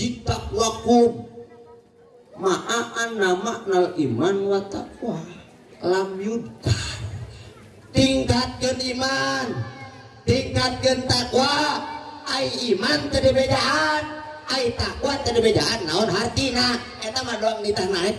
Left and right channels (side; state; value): both; identical; correlation 1.00